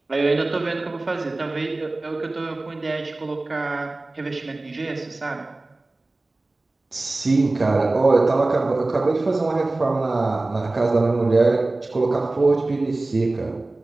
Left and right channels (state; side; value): quieter; left; 3.0 dB